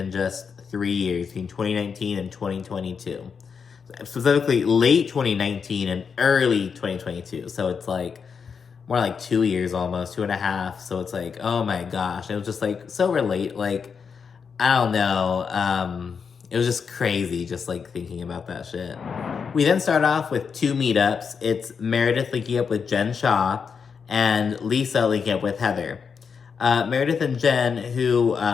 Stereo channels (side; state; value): right; quieter; 6.1 dB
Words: just 3 years, between 2019 and 2022. Specifically, late 2019 and early 2022. So it's like more like 2 years almost, 2.5. So it's like, oh my gosh. It was just like so relate. Like, I don't know. It was just crazy just like thinking about that shit. We then start off with 2 meetups. It's Meredith linking up with Jen Shah and Lisa linking up with Heather. Meredith and Jen, who